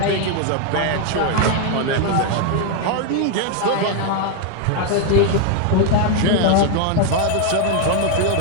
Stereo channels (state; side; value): different; both; correlation 0.01